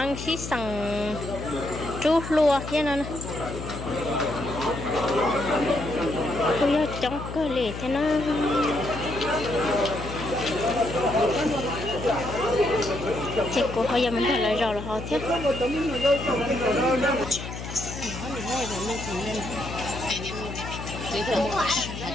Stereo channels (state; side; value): noise; left; hum, 8 dB below the sound